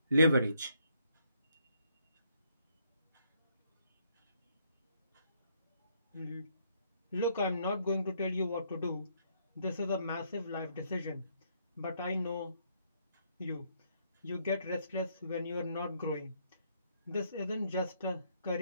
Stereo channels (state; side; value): inverted; both; correlation -0.71